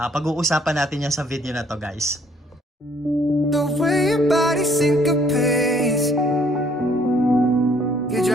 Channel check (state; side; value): normal; both; correlation 0.63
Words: natin yan sa video na to guys. The way your body syncopates, you're